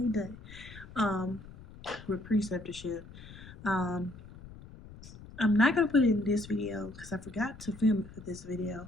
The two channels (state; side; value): noise; left; rumble, 17 dB below the sound